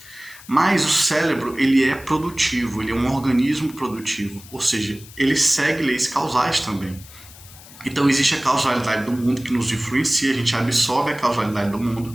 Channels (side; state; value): left; noise; hiss, 20 dB below the sound